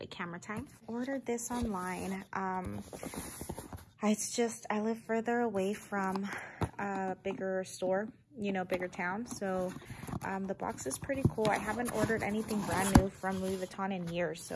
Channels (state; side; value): identical; both; correlation 1.00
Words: of camera time. Ordered this online. It's just, I live further away from a bigger store, you know, bigger town. So the box is pretty cool. I haven't ordered anything brand new from Louis Vuitton in years,